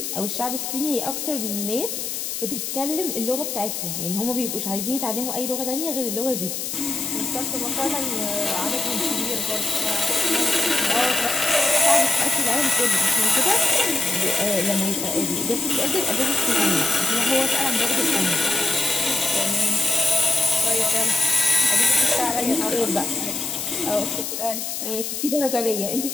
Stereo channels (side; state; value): left; noise; hiss, 4 dB below the sound